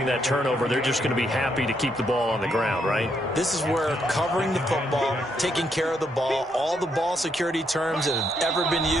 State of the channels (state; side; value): normal; both; correlation 0.76